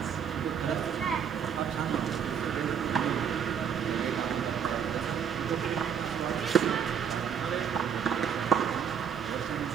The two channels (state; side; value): quieter; left; 7.8 dB